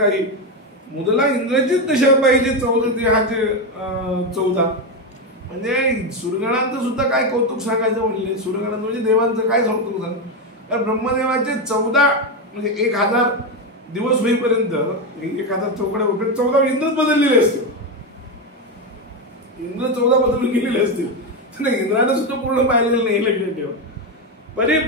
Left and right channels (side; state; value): both; normal; correlation 0.10